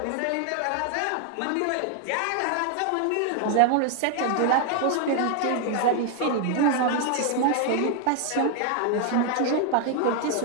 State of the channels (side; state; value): both; different; correlation 0.00